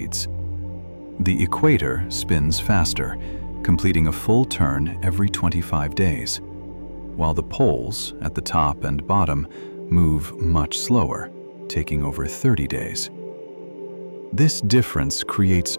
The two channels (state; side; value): inverted; both; correlation -1.00